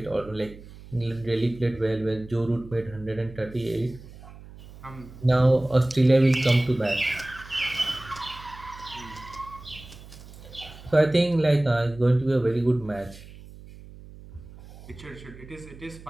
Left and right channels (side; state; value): right; noise; hum, 18 dB below the sound